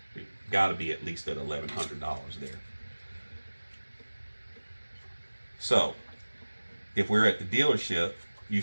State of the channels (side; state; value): both; inverted; correlation -1.00